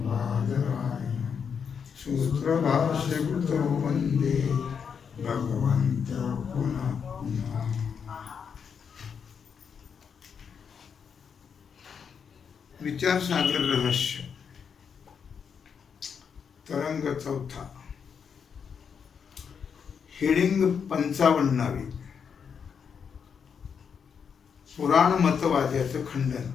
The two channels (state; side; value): quieter; right; 6.8 dB